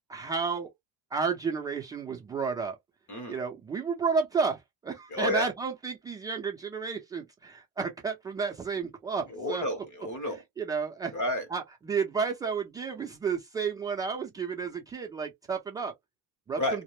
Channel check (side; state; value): left; quieter; 3.8 dB